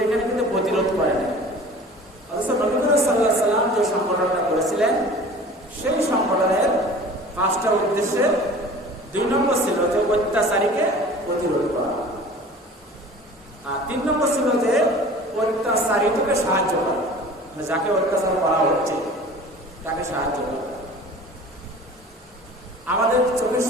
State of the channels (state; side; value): normal; both; correlation 0.43